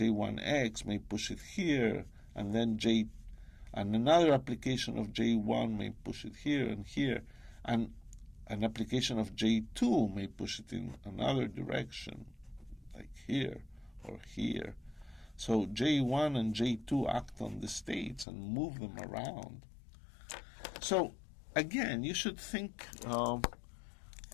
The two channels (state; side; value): drops out; right; at 18.2 s